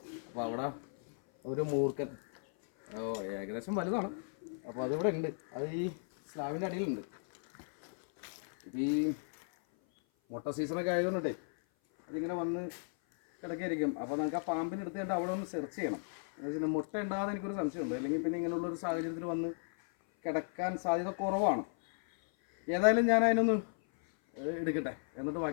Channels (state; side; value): silent; right; 54 dB below the other